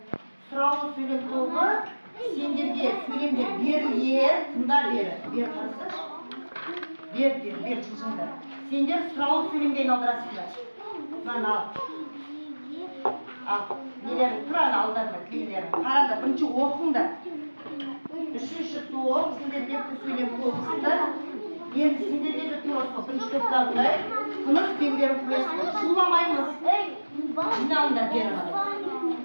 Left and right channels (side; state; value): both; inverted; correlation -1.00